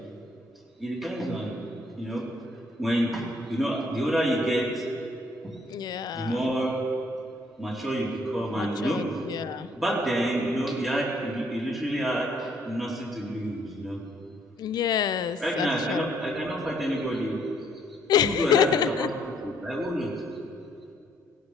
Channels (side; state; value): both; normal; correlation 0.66